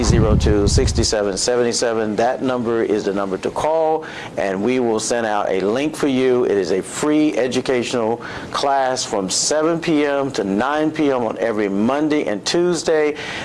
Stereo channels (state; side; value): identical; both; correlation 1.00